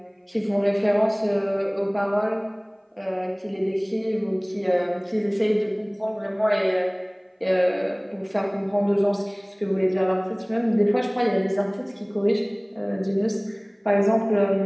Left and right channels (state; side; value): identical; both; correlation 1.00